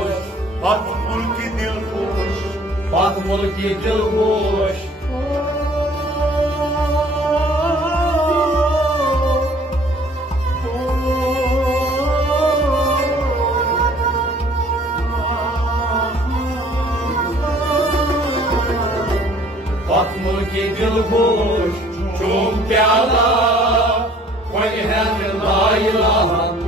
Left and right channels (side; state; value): both; normal; correlation 0.55